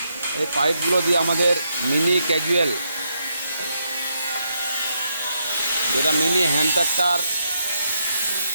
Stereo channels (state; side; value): inverted; both; correlation -0.79